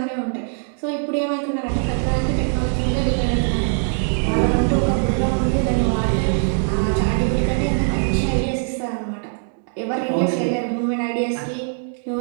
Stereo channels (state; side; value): silent; left; 59 dB below the other